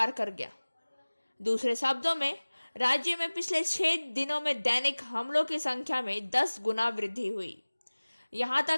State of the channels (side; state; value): both; inverted; correlation -1.00